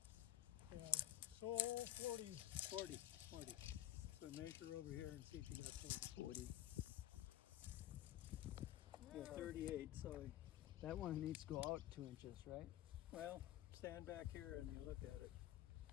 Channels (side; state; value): right; quieter; 13.1 dB